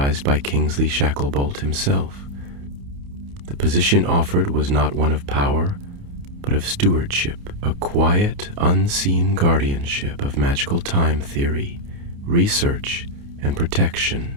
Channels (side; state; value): left; late; 29 ms